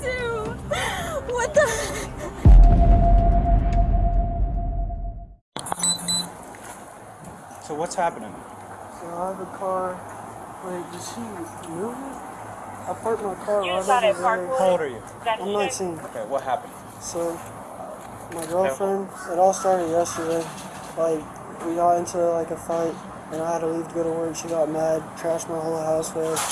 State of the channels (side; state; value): both; identical; correlation 1.00